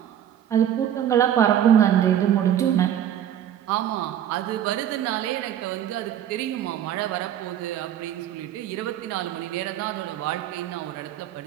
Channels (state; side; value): quieter; left; 10.5 dB